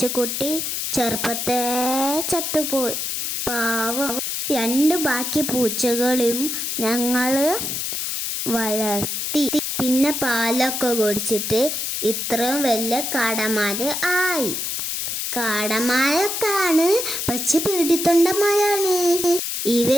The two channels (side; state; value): left; noise; hiss, 2 dB below the sound